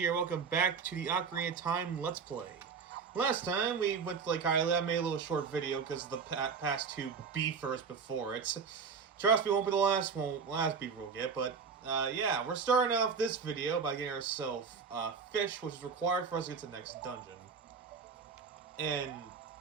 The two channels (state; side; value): quieter; left; 5.8 dB